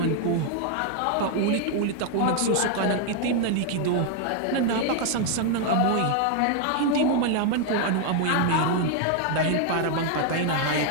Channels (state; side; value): different; both; correlation 0.00